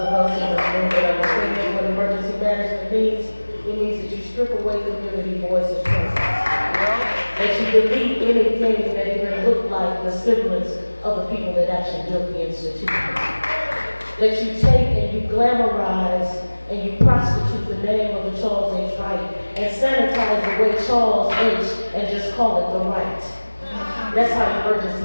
us in this room that understand what emergency management means, it means that you strip away community voice and presence. That you delete anything that even looked like the semblance of the people that actually built the institution. That you take and you glamorize and you prostitute the name of the Charles H. Wright and sanitize the way Charles H. and just call it the Wright. That's how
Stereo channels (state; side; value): inverted; both; correlation -1.00